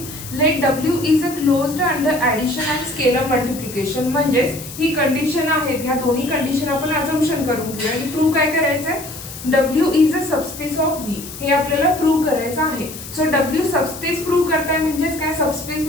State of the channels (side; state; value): left; noise; hiss, 13 dB below the sound